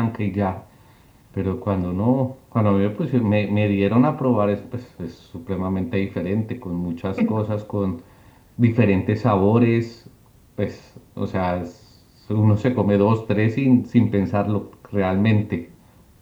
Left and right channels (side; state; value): both; identical; correlation 1.00